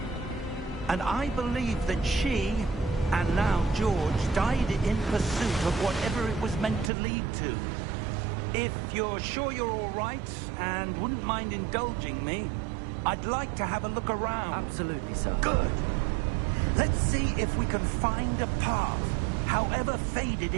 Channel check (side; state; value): left; drops out; at 6.9 s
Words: And I believe that she, and now George, died in pursuit of whatever it was meant to lead to. If you're sure you're all right, and wouldn't mind indulging me, I'd like to have a look around. Absolutely, sir. Good. Let's see if we can find a path, however faded